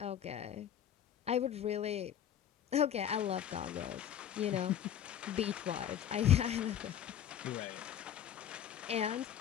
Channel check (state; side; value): quieter; right; 9.9 dB